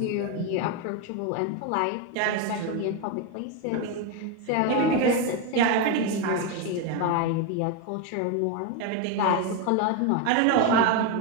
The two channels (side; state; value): both; different; correlation 0.02